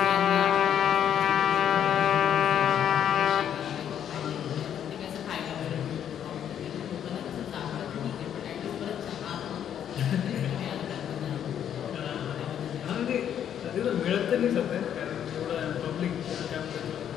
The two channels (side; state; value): right; quieter; 9.5 dB